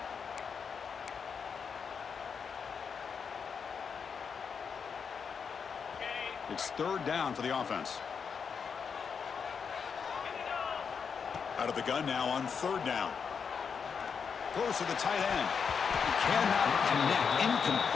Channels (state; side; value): quieter; right; 6.3 dB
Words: It's third down for the offense. Out of the gun now on third down. Close to the tight end. Cannot connect.